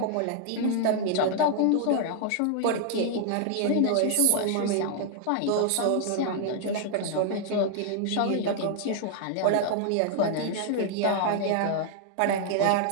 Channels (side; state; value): both; different; correlation 0.00